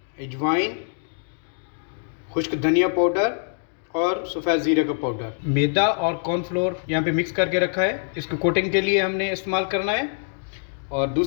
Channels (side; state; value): right; silent; digital silence